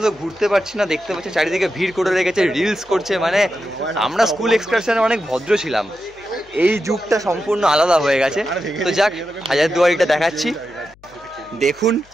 ঘুরতে পারছি না। দেখতে পাচ্ছি চারিদিকে ভিড় করে রেখেছে, রিলস করছে। মানে আমরা স্কুল এক্সকারশনে অনেক ভদ্র ছিলাম, এই যুগটা সম্পূর্ণ আলাদা হয়ে গেছে। তো যাক, হাজারদুয়ারিটা দেখাচ্ছি, দেখুন,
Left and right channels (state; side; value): noise; left; hum, 28 dB below the sound